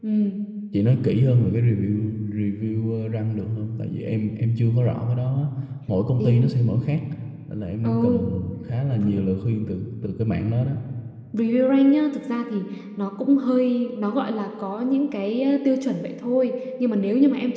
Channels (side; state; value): both; identical; correlation 1.00